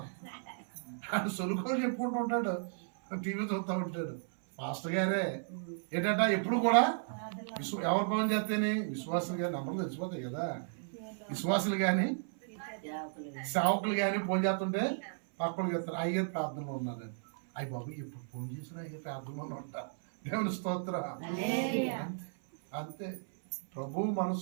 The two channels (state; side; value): silent; left; 55 dB below the other